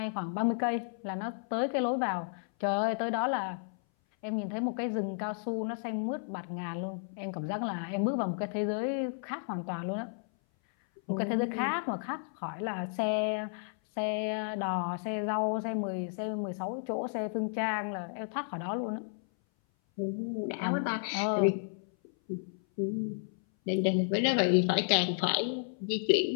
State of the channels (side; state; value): right; silent; 56 dB below the other